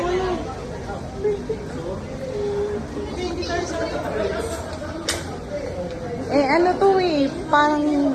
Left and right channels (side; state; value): both; identical; correlation 1.00